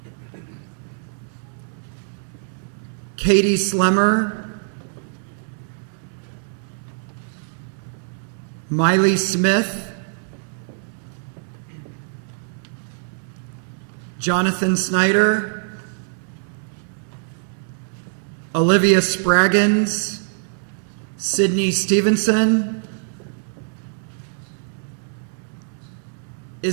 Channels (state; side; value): silent; left; 63 dB below the other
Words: Katie Slemmer, Miley Smith, Jonathan Snyder, Olivia Spraggins, Sydney Stevenson,